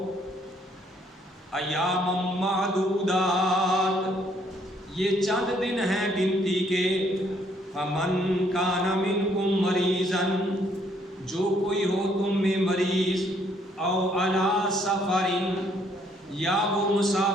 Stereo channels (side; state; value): both; normal; correlation 0.67